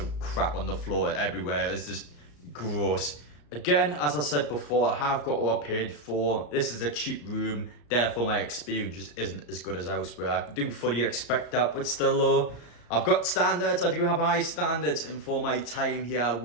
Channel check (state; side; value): late; right; 34 ms